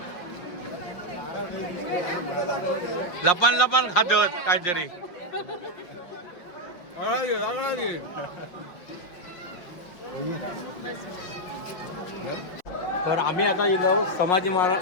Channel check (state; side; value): late; right; 5.6 ms